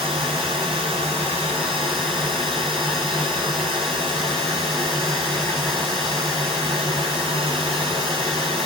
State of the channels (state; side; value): normal; both; correlation 0.39